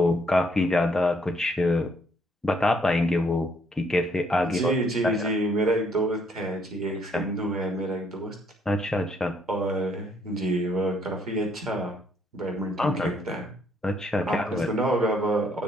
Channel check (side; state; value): both; normal; correlation 0.69